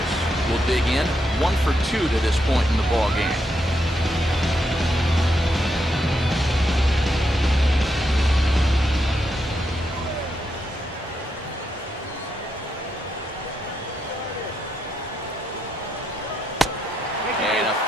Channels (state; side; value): normal; both; correlation 0.81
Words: will dig in. 1 for 2 to this point in the ball game. And a